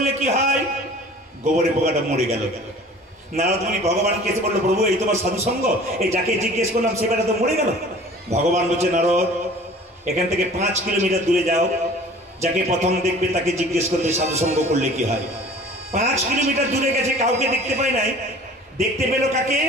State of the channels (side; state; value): both; normal; correlation 0.46